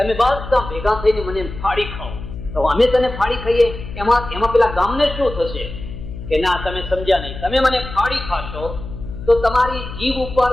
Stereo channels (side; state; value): left; noise; hum, 10 dB below the sound